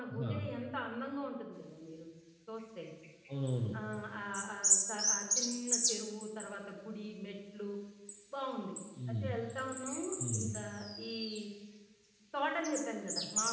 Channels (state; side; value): identical; both; correlation 1.00